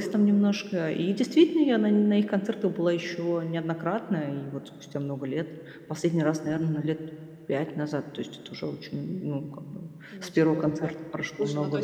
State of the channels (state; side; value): identical; both; correlation 1.00